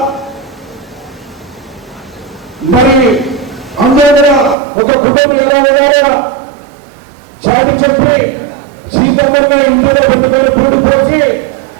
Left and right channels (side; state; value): left; drops out; at 4.5 s